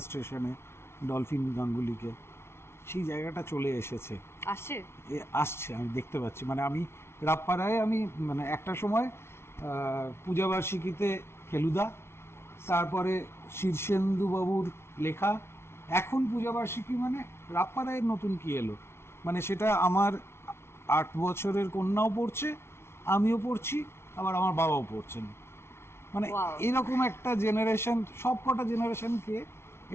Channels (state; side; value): late; right; 0.12 ms